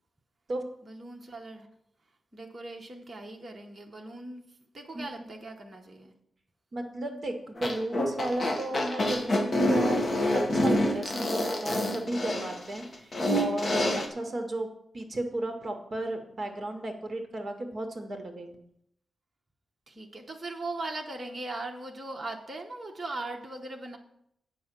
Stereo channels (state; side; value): normal; both; correlation 0.85